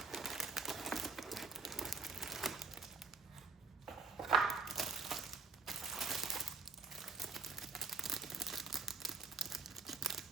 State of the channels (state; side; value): quieter; left; 4.4 dB